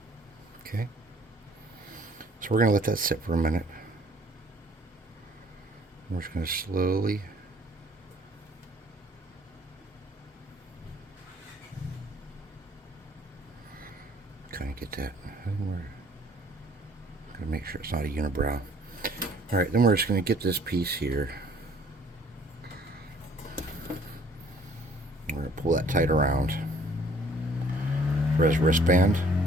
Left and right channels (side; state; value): both; normal; correlation 0.57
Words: Okay. So we're going to let that sit for a minute. We're just going to slowly kind of get that. I think we're going to make sure it's not a unibrow. All right, then we're just going to get this piece here. We're going to pull that tight around for his wristband.